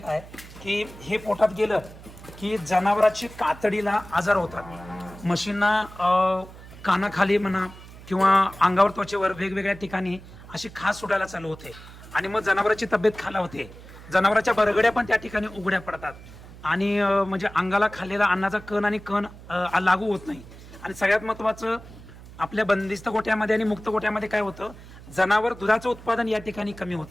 की हे पोटात गेलं की जनावराची कातडीला आजार होतात. म्हशींना कानाखाली म्हणा किंवा अंगावर, त्वचेवर वेगवेगळ्या ठिकाणी अशी खास सुटायला चालू होते आणि मग जनावरांची तब्येत खालावते. जनावरांच्या बरगड्या पण त्या ठिकाणी उघड्या पडतात आणि म्हणजे अंगाला खाल्लेला अन्नाचा कण आणि कण लागू होत नाही. आणि सगळ्यात महत्त्वाचं आपल्या बंदिस्त गोठ्यामध्ये आणि मुक्त गोठ्यामध्ये काय होतं, जनावर दुधाचं उत्पादन या ठिकाणी कमी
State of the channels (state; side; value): noise; right; hum, 18 dB below the sound